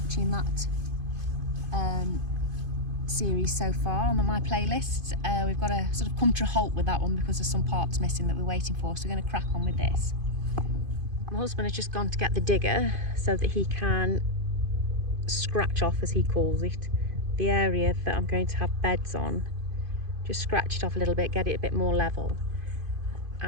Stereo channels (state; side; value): late; left; 2.5 ms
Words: that series so far on my playlists. We've got to sort of come to a halt with that one because there's some parts missing that we're waiting for, so we're going to crack on with this. My husband has just gone to get the digger so that he can scratch off, as he calls it, the area that I'm going to have beds on. Just scratch it off a little bit, get it a bit more level,